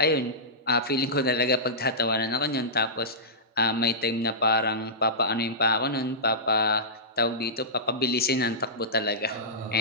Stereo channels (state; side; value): normal; both; correlation -0.16